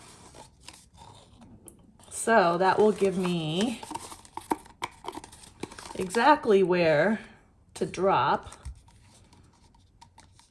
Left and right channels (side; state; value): both; identical; correlation 1.00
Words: So that will give me exactly where to drop